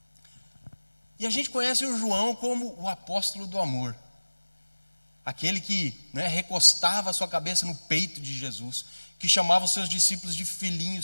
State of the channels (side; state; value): both; inverted; correlation -1.00